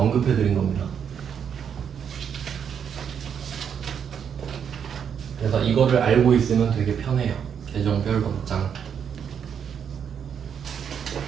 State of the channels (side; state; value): left; quieter; 7.8 dB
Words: 언급해 드린 겁니다. 그래서 이거를 알고 있으면 되게 편해요. 계정별 원장.